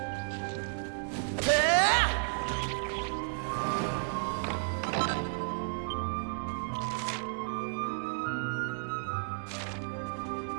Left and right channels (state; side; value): silent; left; digital silence